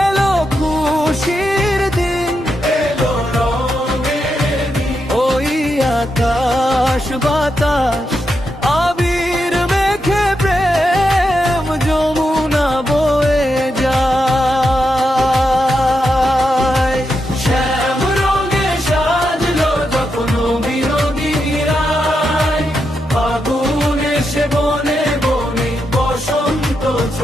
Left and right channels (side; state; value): both; normal; correlation 0.85